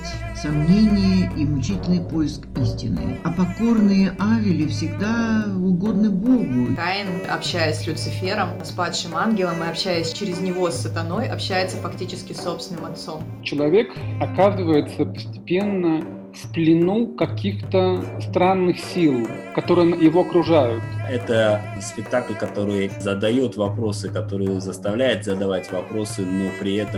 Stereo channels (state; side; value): identical; both; correlation 1.00